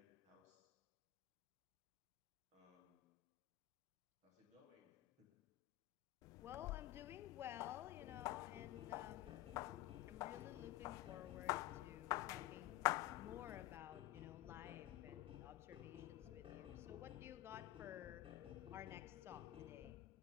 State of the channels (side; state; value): right; quieter; 15.8 dB